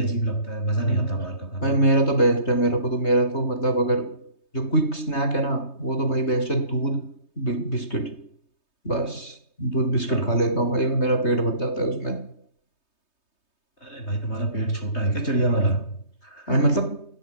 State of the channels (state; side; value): late; right; 3.2 ms